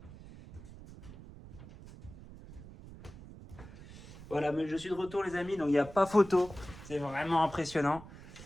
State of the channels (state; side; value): noise; right; rumble, 16 dB below the sound